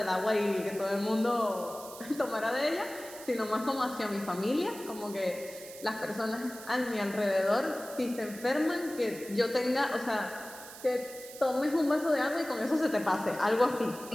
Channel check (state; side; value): noise; right; hiss, 15 dB below the sound